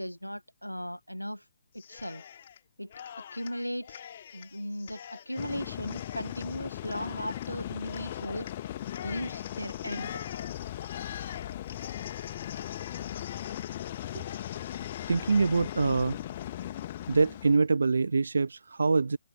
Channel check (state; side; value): inverted; both; correlation -0.87